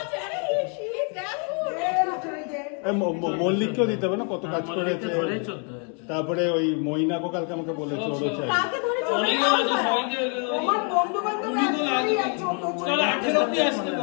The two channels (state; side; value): quieter; right; 39.0 dB